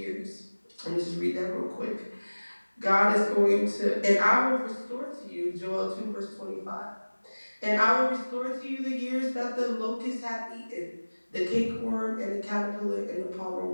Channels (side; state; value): both; inverted; correlation -1.00